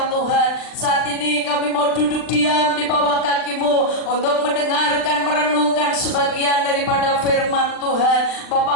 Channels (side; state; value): right; late; 39 ms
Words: Tuhan. Saat ini kami mau duduk diam di bawah kaki-Mu untuk mendengarkan, merenungkan sebagian daripada firman Tuhan.